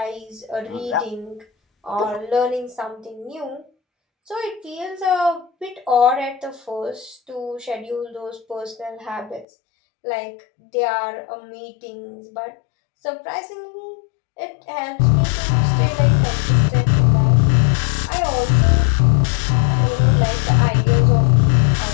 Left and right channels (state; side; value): drops out; right; at 9.5 s